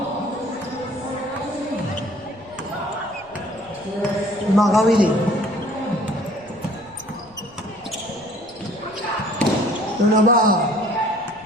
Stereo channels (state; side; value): noise; left; rumble, 26 dB below the sound